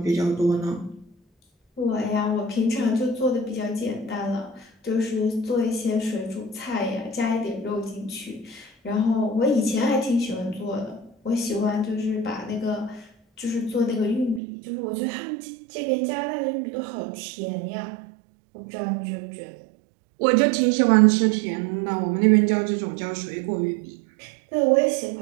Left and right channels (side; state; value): left; drops out; at 14.4 s